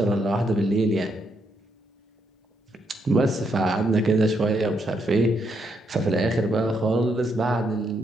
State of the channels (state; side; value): normal; both; correlation 0.77